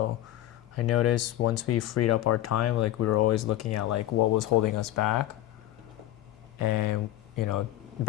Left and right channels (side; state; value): right; quieter; 14.0 dB